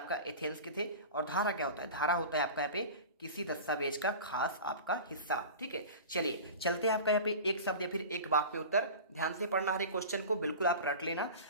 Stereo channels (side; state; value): both; inverted; correlation -0.34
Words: एथेंस के थे। और धारा क्या होता है, धारा होता है आपका यहाँ पे किसी दस्तावेज का खास आपका हिस्सा, ठीक है। चलिए चलते हैं आपका यहाँ पे एक शब्द या फिर एक वाक्य में उत्तर, ध्यान से पढ़ना हर एक क्वेश्चन को, बिल्कुल आप रट लेना।